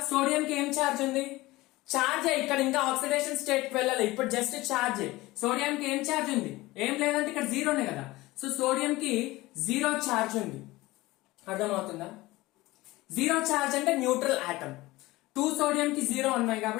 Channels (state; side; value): quieter; right; 19.6 dB